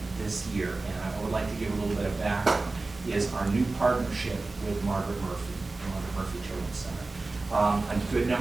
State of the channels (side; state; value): left; quieter; 3.4 dB